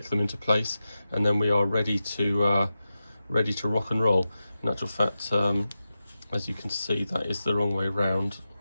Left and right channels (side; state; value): both; inverted; correlation -0.92